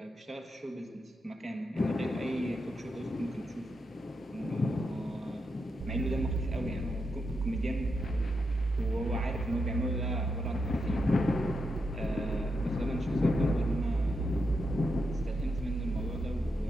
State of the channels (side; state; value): both; normal; correlation 0.84